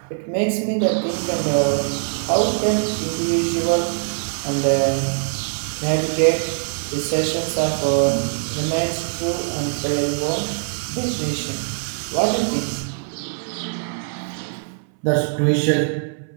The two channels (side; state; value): left; silent; 60 dB below the other